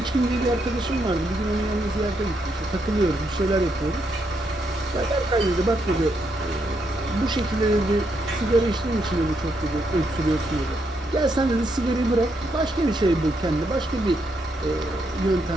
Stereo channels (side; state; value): both; normal; correlation 0.78